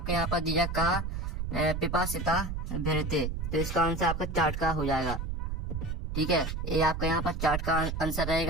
यहाँ पर दिया कहा पिपासिता भरते, तो इसका आंसर आपका चार्ट का हो जाएगा, ठीक है। ये आपका यहाँ पर चार्ट का आंसर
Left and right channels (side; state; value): right; noise; rumble, 3 dB below the sound